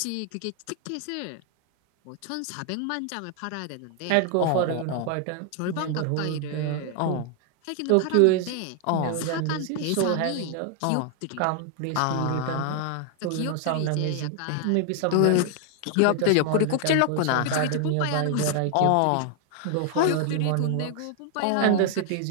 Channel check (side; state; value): both; different; correlation 0.00